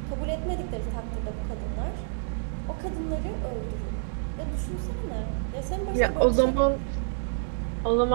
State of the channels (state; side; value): silent; left; digital silence